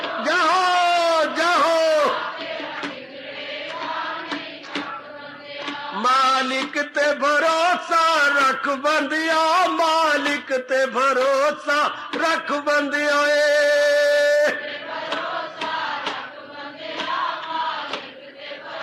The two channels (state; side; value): identical; both; correlation 1.00